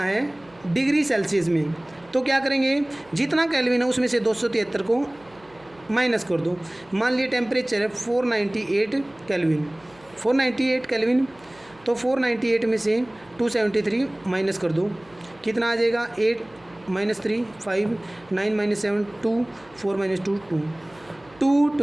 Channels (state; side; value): noise; right; hum, 28 dB below the sound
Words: डिग्री सेल्सियस में, तो क्या करेंगे, जितना केल्विन है उसमें से 273 को माइनस कर दो। मान लिए टेम्परेचर है 498 केल्विन, तो 498 में से 273 माइनस कर दो, कितना आ जाएगा, 8 - 3 5 9 - 7 2 4 - 2 2